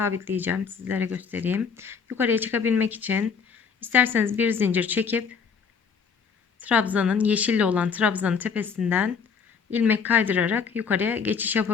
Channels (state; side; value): quieter; right; 6.1 dB